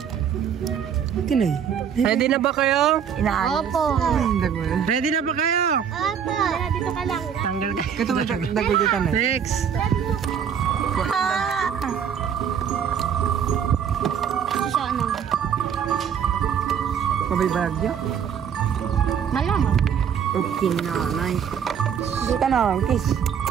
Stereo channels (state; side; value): quieter; left; 7.9 dB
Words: Kinay. Ready na ba kayo? Opo. Ready na ba kayo? Opo. Dito ka lang. Tanggal ka. Ito mo dagol dito na. Next. Siya ano? Mabibag niyo? Malamang. Okay na, nice. Dito na, kiss.